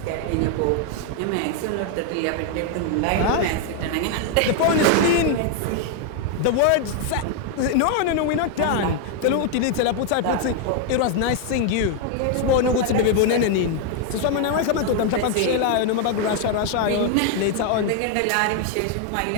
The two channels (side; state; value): both; different; correlation 0.00